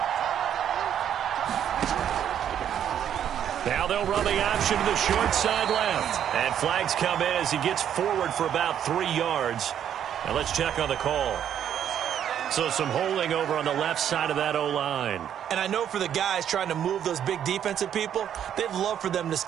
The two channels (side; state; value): left; quieter; 9.6 dB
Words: Now they'll run the option to the short side left. And flags come in as he gets forward for about 3 yards. Now let's check on the call. So some holding over on the left side of that O-line. And I know for the guys trying to move those big defensive people, they'd love for them to